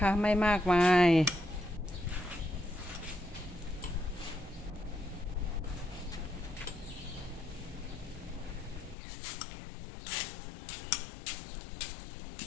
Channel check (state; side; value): drops out; right; at 9.0 s